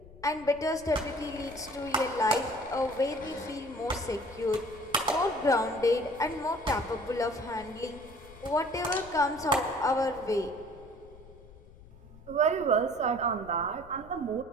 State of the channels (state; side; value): noise; left; rumble, 21 dB below the sound